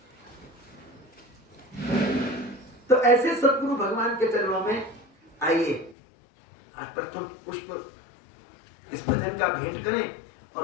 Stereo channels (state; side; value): drops out; right; at 6.0 s